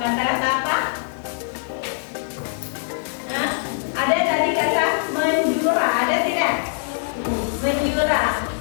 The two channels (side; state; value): right; silent; digital silence